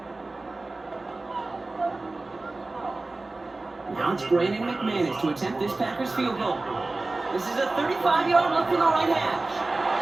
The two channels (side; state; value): left; quieter; 3.2 dB